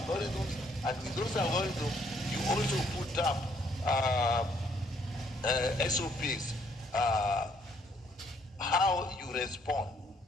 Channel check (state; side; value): normal; both; correlation 0.67